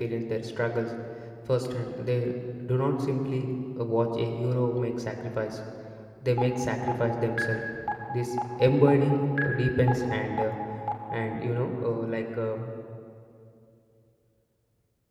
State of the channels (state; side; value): identical; both; correlation 1.00